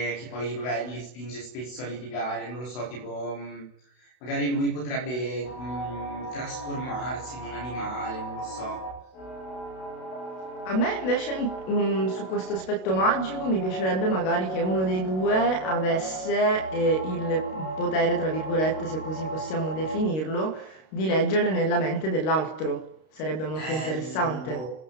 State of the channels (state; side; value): late; right; 32 ms